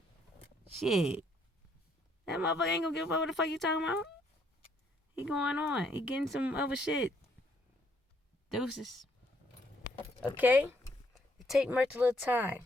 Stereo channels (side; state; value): both; normal; correlation 0.69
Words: shit, that motherfucker ain't gonna give a fuck what the fuck you talking about. He going on. He getting some other shit. Deuces. Okay? It take merch a little time.